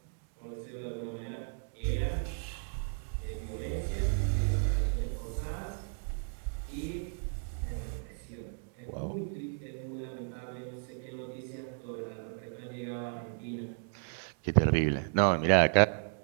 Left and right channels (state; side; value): silent; left; 55 dB below the other